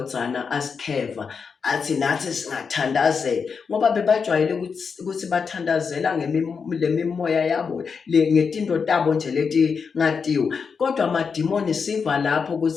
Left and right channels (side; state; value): right; quieter; 5.7 dB